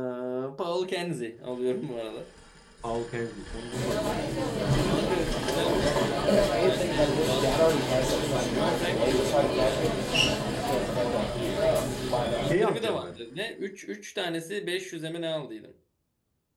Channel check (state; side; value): identical; both; correlation 1.00